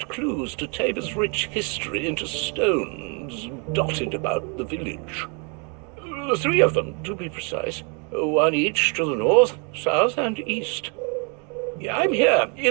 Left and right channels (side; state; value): left; quieter; 35.1 dB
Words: clues to Tabor's rich history into stones dotted about the village. 3 of them, to be precise. 1 each to the north, south, and east. I'm here